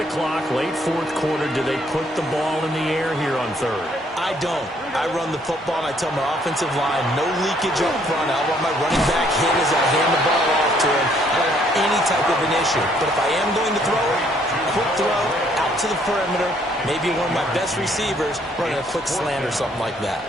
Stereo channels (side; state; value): both; normal; correlation 0.66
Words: the clock, late 4th quarter, do they put the ball in the air here on 3rd? I don't. I run the football, and I tell my offensive line, no leakage up front. I want my running back hit as I hand the ball off to him. I don't want any type of an issue. But if I am going to throw it, quick throw, out to the perimeter, maybe one of my best receivers running a quick slant or something like that.